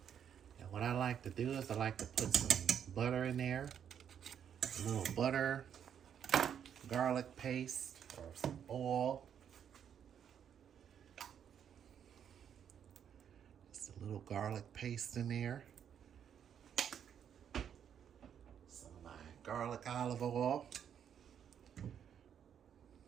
And what I like to do is I like to put some butter in there. A little butter, garlic paste, or some oil. Just a little garlic paste in there. Some of my garlic olive oil.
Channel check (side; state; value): left; quieter; 8.6 dB